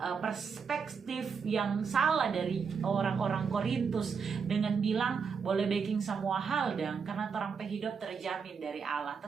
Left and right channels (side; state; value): left; quieter; 5.9 dB